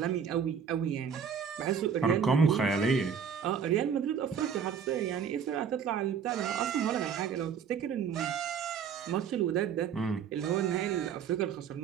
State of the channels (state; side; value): quieter; left; 7.2 dB